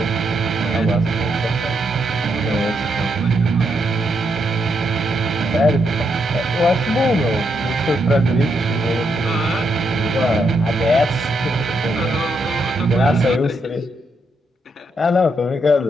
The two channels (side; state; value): both; normal; correlation 0.79